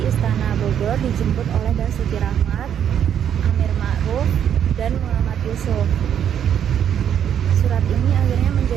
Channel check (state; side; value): quieter; left; 9.1 dB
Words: Istana Bogor, dijemput oleh Basuki Rahmat, Amir Ma'ruf, dan Muhammad Yusuf. Surat ini akhirnya